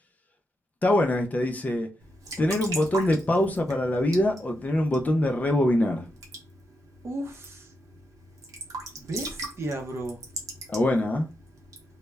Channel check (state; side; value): normal; both; correlation 0.84